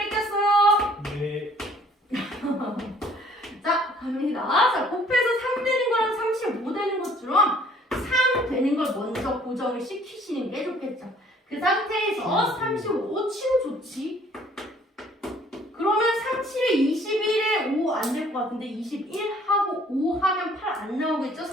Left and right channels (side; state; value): both; normal; correlation 0.57